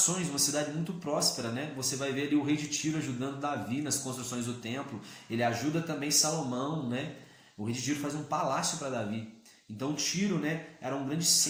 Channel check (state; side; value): identical; both; correlation 1.00